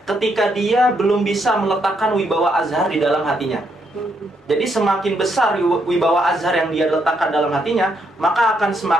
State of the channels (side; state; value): both; normal; correlation 0.76